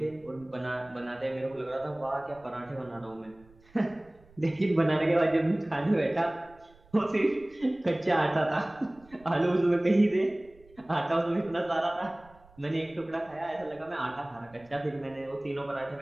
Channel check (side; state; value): right; noise; rumble, 27 dB below the sound